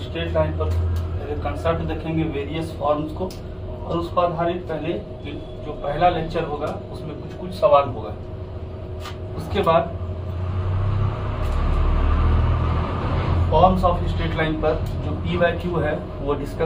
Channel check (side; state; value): both; identical; correlation 1.00